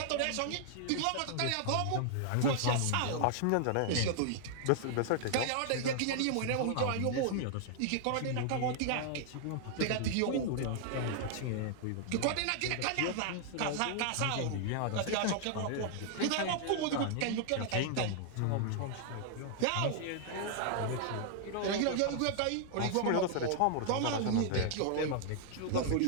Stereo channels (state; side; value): different; both; correlation 0.00